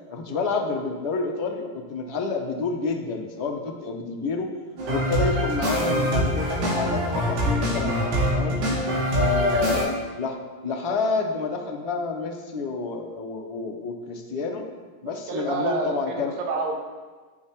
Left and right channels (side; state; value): left; late; 17 ms